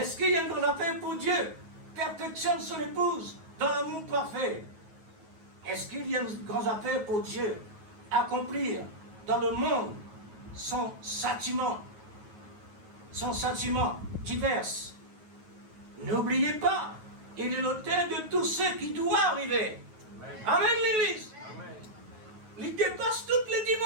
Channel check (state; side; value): late; left; 9.3 ms